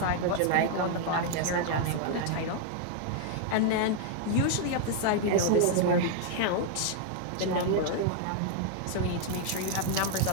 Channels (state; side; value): different; both; correlation 0.00